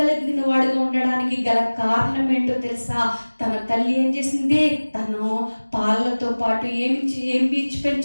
వాడిగా ఉండడానికి గల కారణం ఏంటో తెలుసా? తన తల్లి ఏం చేసింది? తను పాలతో పాటు ఏమి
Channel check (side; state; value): both; inverted; correlation -1.00